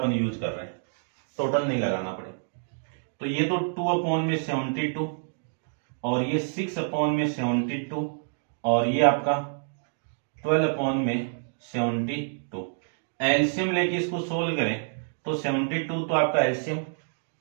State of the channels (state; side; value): silent; left; digital silence